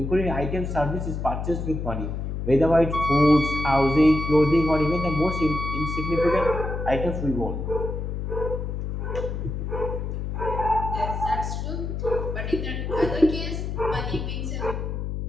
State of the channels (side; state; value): left; noise; hum, 4 dB below the sound